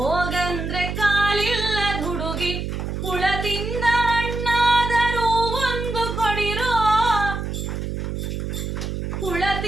ಕಾಲಿಲ್ಲದ ಹುಡುಗಿ ಹುಳ ತಿಂದ ಹಣ್ಣಾದರೂ ಒಂದು ಕೊಡಿರೋ ಹುಳ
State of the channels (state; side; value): noise; right; hum, 4 dB below the sound